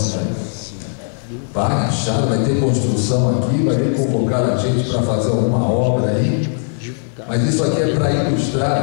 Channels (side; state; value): right; silent; 67 dB below the other